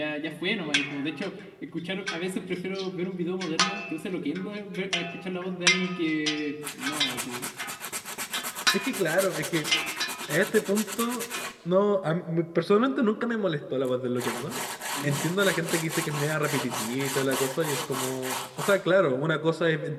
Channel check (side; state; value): both; identical; correlation 1.00